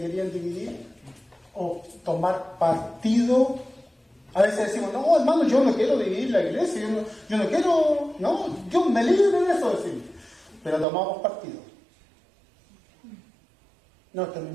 dividir o tomar partido. A veces decimos, no, hermano, yo no quiero dividir la iglesia, yo no quiero, no, Dios me libre de eso, decimos. Pero tomamos partido. No, es que a mí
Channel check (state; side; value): drops out; left; at 10.9 s